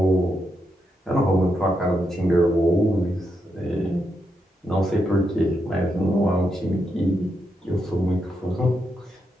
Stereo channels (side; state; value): both; normal; correlation 0.82